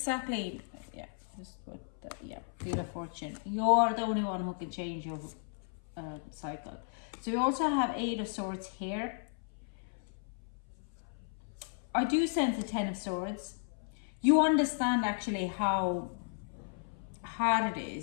Wheel of Fortune. You're the only one who can change your cycle. So we also have Eight of Swords here. I do sense the Ten of Swords. You understand actually how hard it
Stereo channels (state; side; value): silent; right; 55 dB below the other